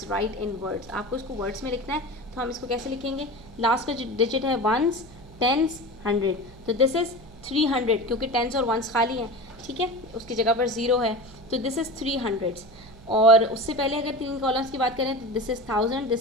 right in words. आपको इसको वर्ड्स में लिखना है, तो हम इसको कैसे लिखेंगे, लास्ट का जो डिजिट है 1s 10s 100, तो दिस इज़ 300 क्योंकि 10s और 1s खाली हैं। ठीक है, उसकी जगह पर 0 है, तो दिस इज़ 300। और उससे पहले अगर 3 कॉलम्स की बात करें तो this is 1000,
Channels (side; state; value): right; noise; hum, 21 dB below the sound